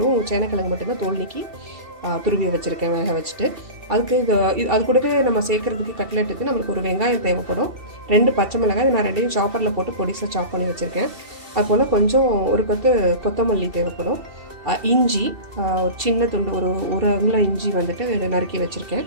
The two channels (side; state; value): left; late; 2.7 ms